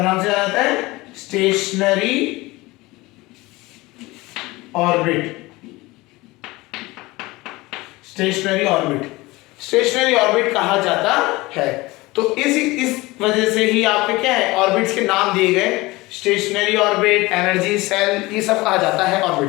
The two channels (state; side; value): quieter; right; 21.2 dB